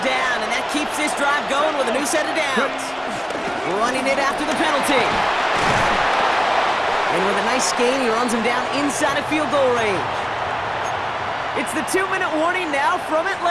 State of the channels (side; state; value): both; identical; correlation 1.00